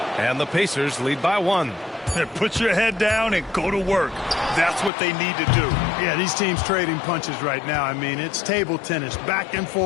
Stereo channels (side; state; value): right; drops out; at 4.9 s